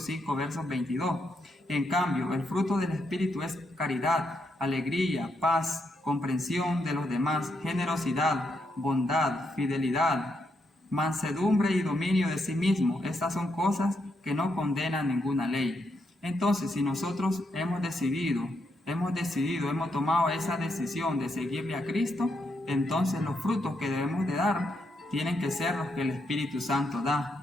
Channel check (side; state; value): both; normal; correlation 0.80